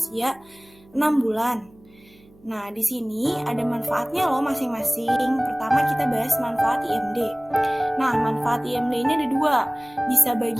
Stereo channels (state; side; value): noise; right; hum, 28 dB below the sound